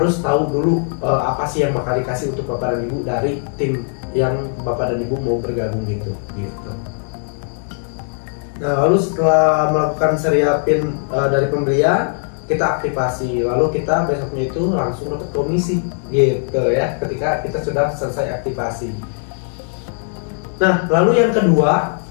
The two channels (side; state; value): right; silent; 62 dB below the other